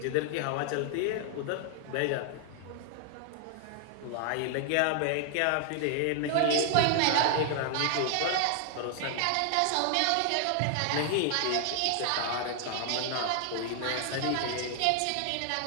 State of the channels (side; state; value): both; different; correlation 0.00